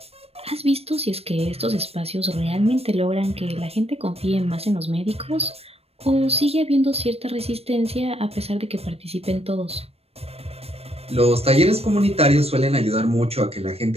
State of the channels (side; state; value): left; late; 0.29 ms